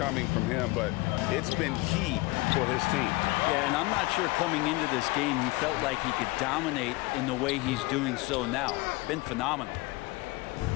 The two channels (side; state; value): right; quieter; 22.5 dB